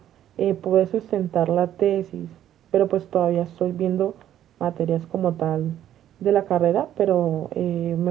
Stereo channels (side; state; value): left; quieter; 11.4 dB